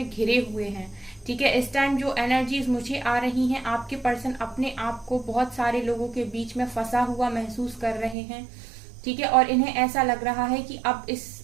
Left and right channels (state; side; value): drops out; left; at 8.2 s